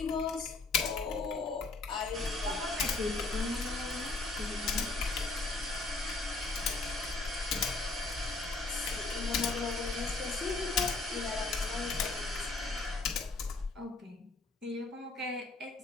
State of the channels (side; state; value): right; quieter; 3.5 dB